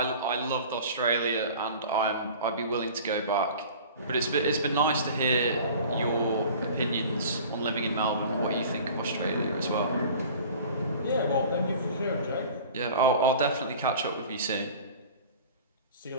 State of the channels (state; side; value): inverted; both; correlation -0.42